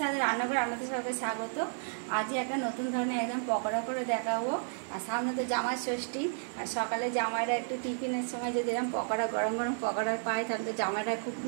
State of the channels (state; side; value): silent; left; digital silence